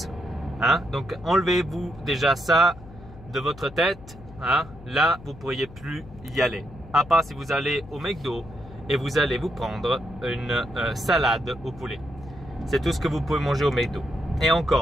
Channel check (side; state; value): left; noise; hum, 19 dB below the sound